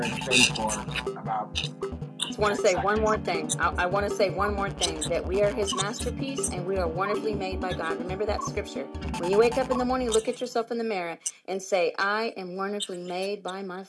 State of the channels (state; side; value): identical; both; correlation 1.00